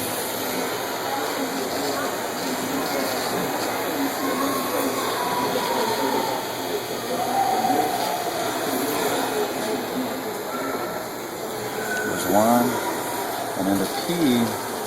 One, and then the P, you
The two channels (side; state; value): both; identical; correlation 1.00